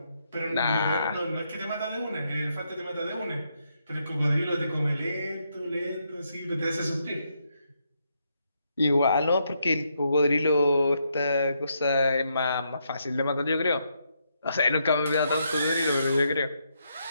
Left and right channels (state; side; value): inverted; both; correlation -0.78